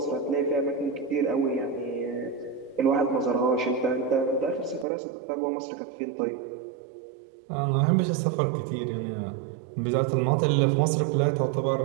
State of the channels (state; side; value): drops out; left; at 4.9 s